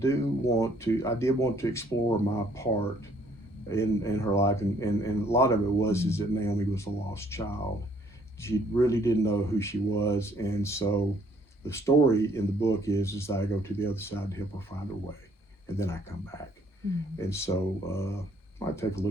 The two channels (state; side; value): normal; both; correlation 0.64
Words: want to explore my part in her life. And a lot of it is that Naomi was a lost child. She really didn't know who she was. And so the story in the book is that I go to the other side to help her find her way. And then I come back. And so I take a